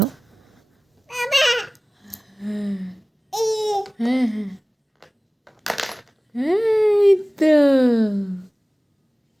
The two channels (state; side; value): normal; both; correlation 0.98